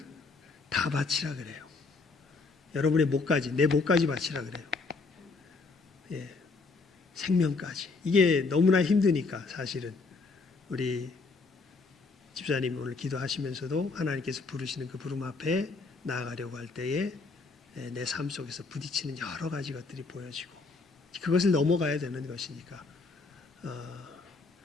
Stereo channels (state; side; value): quieter; right; 4.0 dB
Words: 다 바치라 그래요. 여러분의 목까지, 내 목까지 바치라 그래요. 예. 생명까지. 이게 너무나 힘드니까 사실은 우리 집사님 오늘 기도하시면서도 하나님께서 부르시는 그 부름 앞에 나아가려고 할 때에 내 삶 속에서 부딪히는 여러 가지 것들이 보여지고 그것을 넘어가야 되는 것이니까